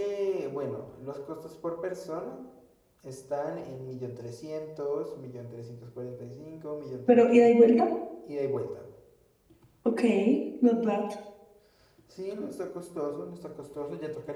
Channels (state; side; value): identical; both; correlation 1.00